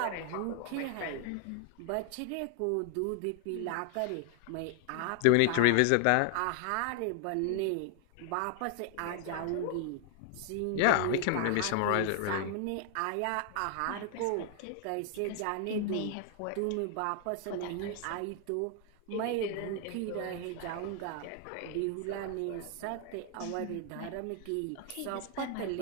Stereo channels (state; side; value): different; both; correlation 0.00